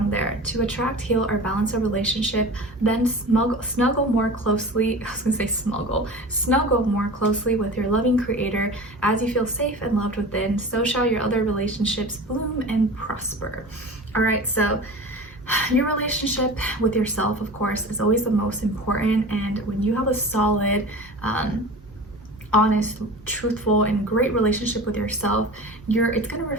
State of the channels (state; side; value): normal; both; correlation 0.35